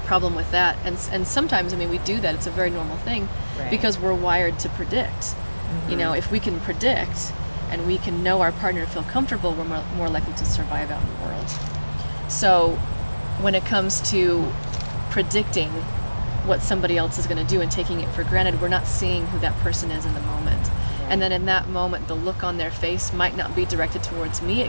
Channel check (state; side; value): inverted; both; correlation -1.00